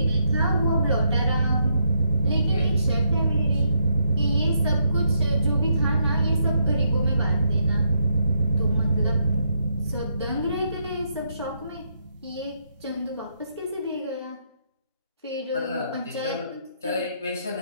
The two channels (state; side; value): inverted; both; correlation -0.77